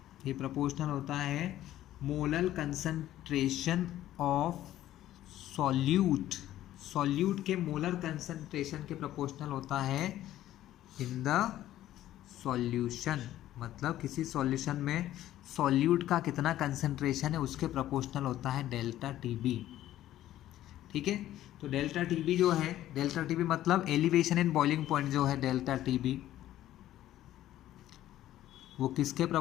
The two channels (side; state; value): right; quieter; 13.4 dB